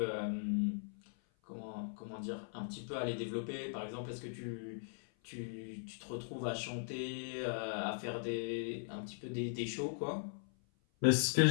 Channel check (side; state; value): right; silent; 51 dB below the other